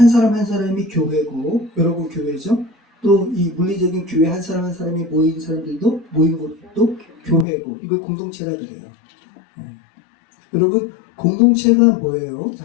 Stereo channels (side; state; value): right; drops out; at 7.5 s